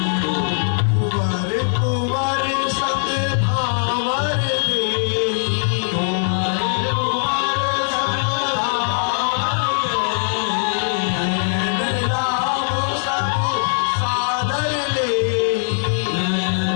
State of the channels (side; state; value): right; silent; 64 dB below the other